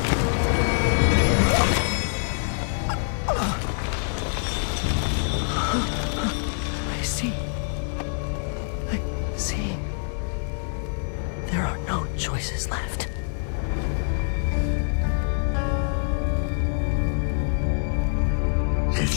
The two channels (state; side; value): silent; right; 55 dB below the other